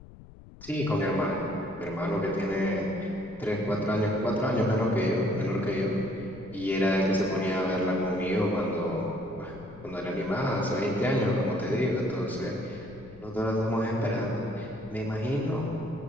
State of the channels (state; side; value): noise; left; rumble, 19 dB below the sound